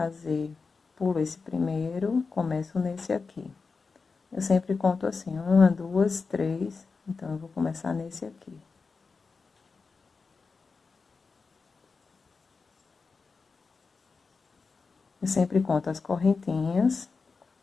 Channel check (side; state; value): right; quieter; 4.6 dB